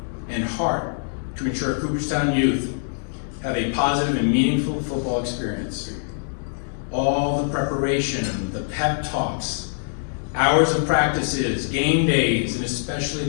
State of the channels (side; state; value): right; silent; digital silence